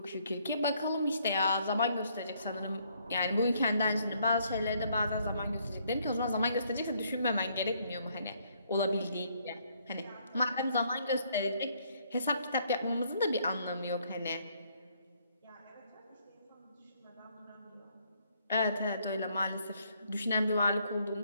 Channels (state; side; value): inverted; both; correlation -0.68